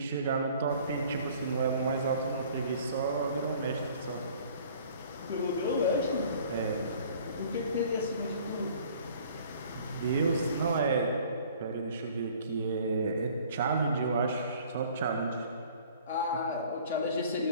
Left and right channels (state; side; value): inverted; both; correlation -0.52